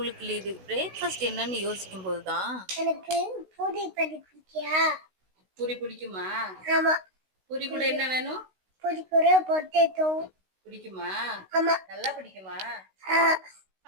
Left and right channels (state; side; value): late; left; 16 ms